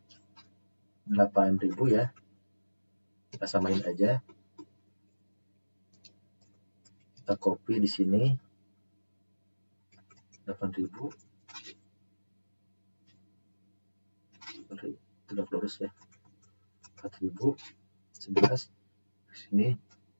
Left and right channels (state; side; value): inverted; both; correlation -1.00